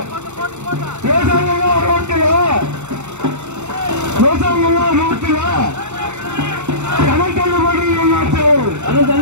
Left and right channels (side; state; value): left; late; 0.83 ms